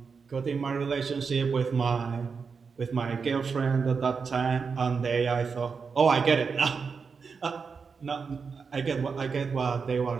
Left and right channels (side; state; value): left; quieter; 5.4 dB